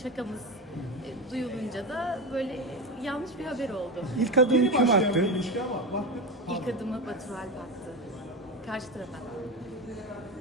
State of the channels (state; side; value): normal; both; correlation 0.19